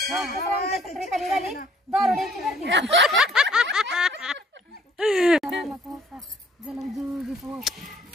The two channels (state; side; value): normal; both; correlation 0.61